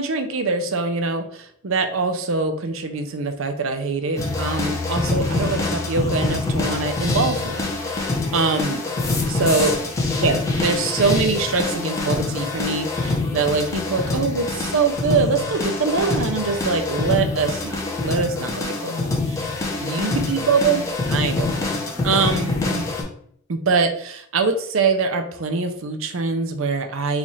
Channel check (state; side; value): normal; both; correlation 0.14